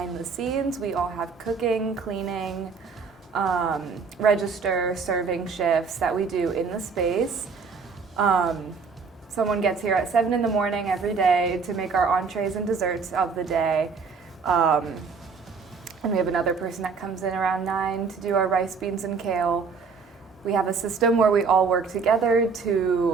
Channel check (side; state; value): left; quieter; 5.2 dB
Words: the scenes, we all have cooking, cleaning, register, serving shifts that we do in the space. Someone gets here at 7 in the morning every day to make our entrees and desserts of the day. And we have another person that comes in around 9 to do our rice, beans, and kale. We have a system where we all work together